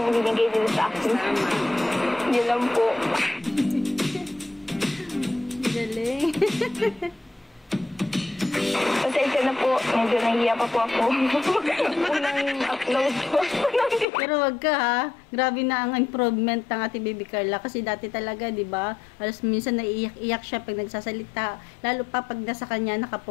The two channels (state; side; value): drops out; right; at 14.1 s